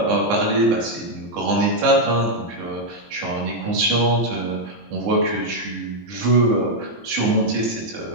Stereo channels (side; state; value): left; late; 18 ms